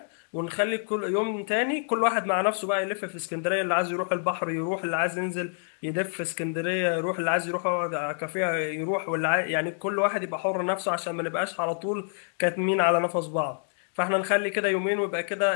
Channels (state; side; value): silent; right; digital silence